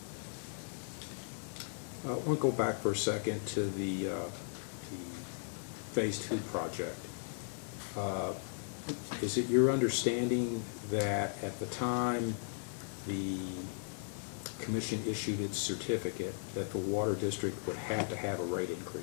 I want to go back for a second to the Phase 2 project. Is it your understanding that at the time the commission issued its certificate that the water district would have to have a rate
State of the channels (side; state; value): right; silent; 53 dB below the other